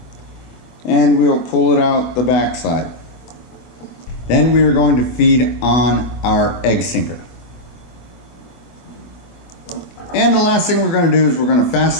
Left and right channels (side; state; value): right; late; 24 ms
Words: and we'll pull it out the back side. Then we are going to feed on our egg sinker. And the last thing we're going to do is we're going to